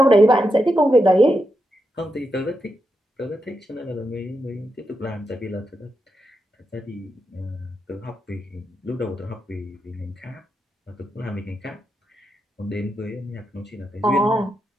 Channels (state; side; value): normal; both; correlation 0.85